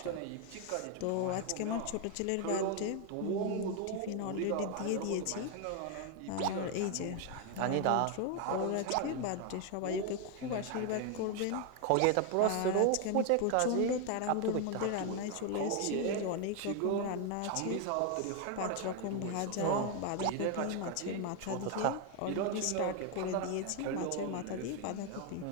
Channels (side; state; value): both; different; correlation 0.01